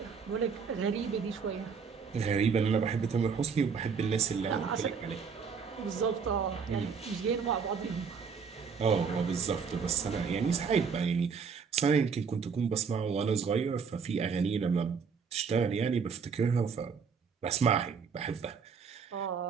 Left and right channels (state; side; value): quieter; left; 6.0 dB